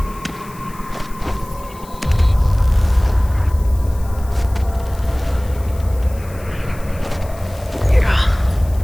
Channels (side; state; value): left; noise; hiss, 22 dB below the sound